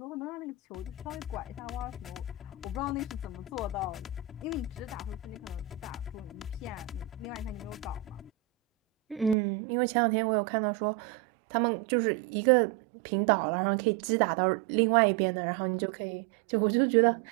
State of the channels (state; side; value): drops out; left; at 9.3 s